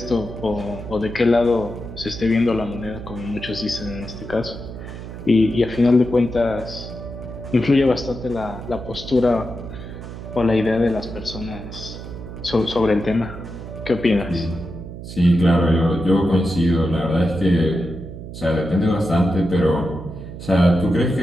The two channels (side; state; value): right; noise; hum, 11 dB below the sound